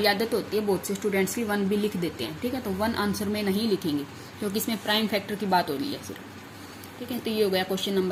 आदत होती है, बहुत से स्टूडेंट्स की 1 भी लिख देते हैं, ठीक है। तो 1 आंसर में नहीं लिखेंगे क्योंकि इसमें प्राइम फैक्टर की बात हो रही है सिर्फ, ठीक है। तो ये हो गया question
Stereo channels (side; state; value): both; identical; correlation 1.00